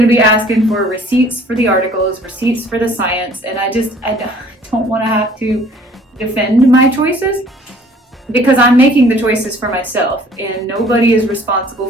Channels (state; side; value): normal; both; correlation 0.54